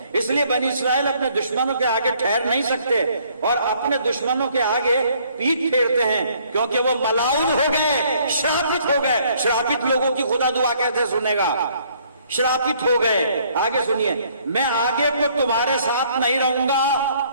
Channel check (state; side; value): inverted; both; correlation -0.63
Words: इसलिए बनी इस्राएल अपने दुश्मनों के आगे ठहर नहीं सकते और अपने दुश्मनों के आगे पीठ फेरते हैं, क्योंकि वो मलाउन हो गए, श्रापित हो गए। श्रापित लोगों की खुदा दुआ कैसे सुनेगा? श्रापित हो गए। आगे सुनिए, मैं आगे को तुम्हारे साथ नहीं रहूंगा।